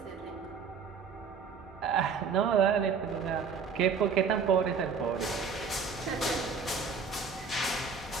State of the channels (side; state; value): left; quieter; 5.7 dB